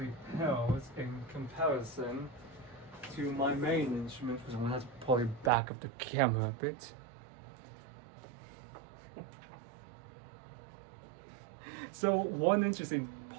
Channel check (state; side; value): drops out; left; at 5.5 s